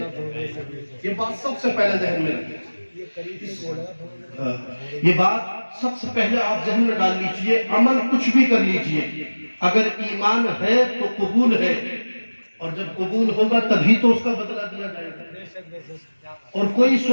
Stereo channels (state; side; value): inverted; both; correlation -1.00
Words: یہ بات سب سے پہلے ذہن میں رکھیں، یہ بات سب سے پہلے آپ ذہن میں ڈال لیجئے۔ عمل کچھ بھی کر لیجئے، اگر ایمان ہے تو قبول ہے، اور جب قبول ہوگا تبھی تو اس کا بدلہ دیا جائے گا۔ اور کوئی